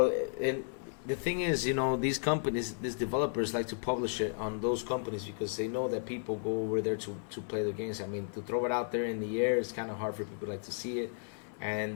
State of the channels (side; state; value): right; silent; 55 dB below the other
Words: The thing is, you know, these companies, these developers like to publish it on those companies because they know that people go over there to play their games. I mean, to throw it out there in the air, it's kind of hard for people like to see it.